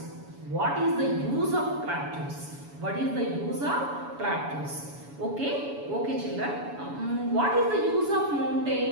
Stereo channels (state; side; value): late; left; 7.1 ms